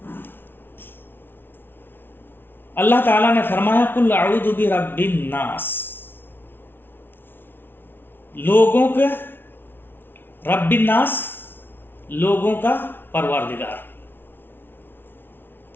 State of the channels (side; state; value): right; late; 0.10 ms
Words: اللہ تعالیٰ نے فرمایا قل اعوذ برب الناس، لوگوں کے رب الناس لوگوں کا پروردگار۔